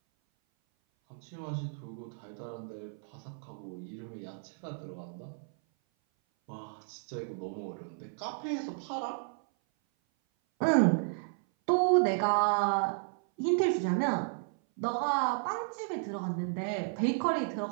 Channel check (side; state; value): left; silent; 56 dB below the other